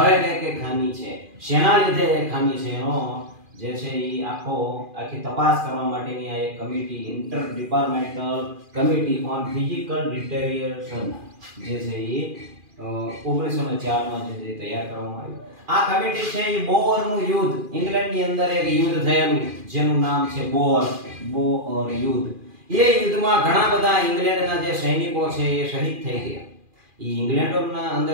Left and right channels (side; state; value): left; late; 2.4 ms